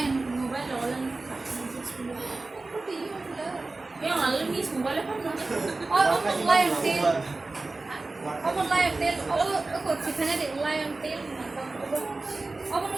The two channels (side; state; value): left; quieter; 3.4 dB